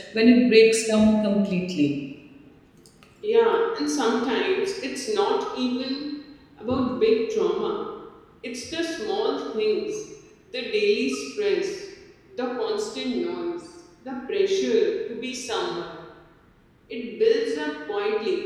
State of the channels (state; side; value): identical; both; correlation 1.00